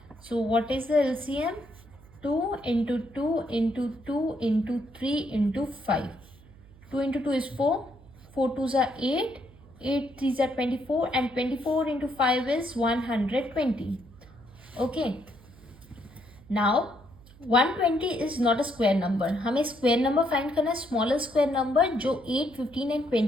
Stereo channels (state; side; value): noise; right; hum, 23 dB below the sound